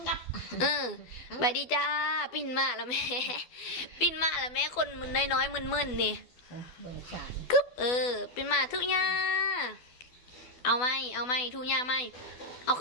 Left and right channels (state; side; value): late; right; 12 ms